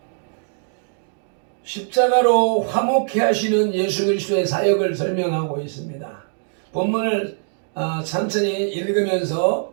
십자가로 화목케 하시는 예수 그리스도의 사역을 설명하고 있습니다. 본문을 천천히 읽으면서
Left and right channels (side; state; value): left; silent; digital silence